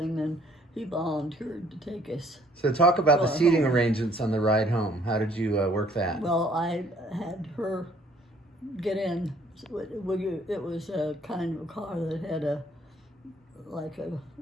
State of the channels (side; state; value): both; normal; correlation 0.61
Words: and he volunteered to take us. So talk about the Well, seating home. arrangements on the ride home. How did you work that? Well, I had her get in. It was a kind of a car that had like a